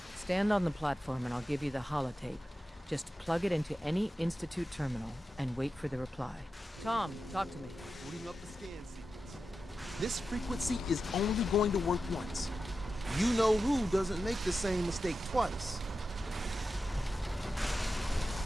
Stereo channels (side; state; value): both; normal; correlation 0.91